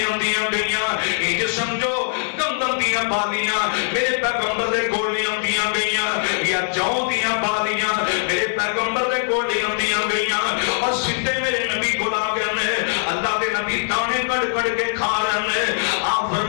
گئیاں، یہ سمجھو گندم دیاں بالیاں میرے پیغمبر دے کول لیاندیاں گئیاں، یا جو دیاں بالیاں میرے پیغمبر دے کول لیاندیاں گئیاں، اور سیدھے میرے نبی کو آ گئے نے، اللہ دے نبی دانے کٹ کٹ کے کھا رہے ہیں، آپ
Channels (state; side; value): silent; right; 59 dB below the other